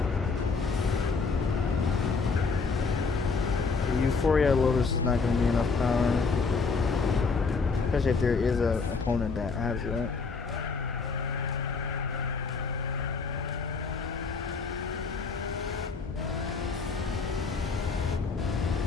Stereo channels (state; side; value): quieter; right; 4.7 dB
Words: The Euphoria Lotus is not going to be enough power. Especially if there is an opponent that has it.